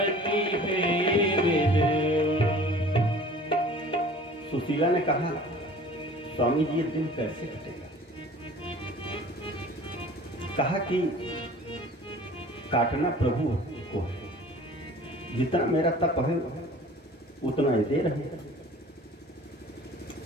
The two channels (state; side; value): normal; both; correlation 0.46